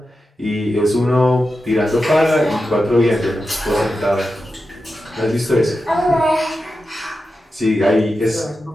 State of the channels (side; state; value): both; normal; correlation 0.91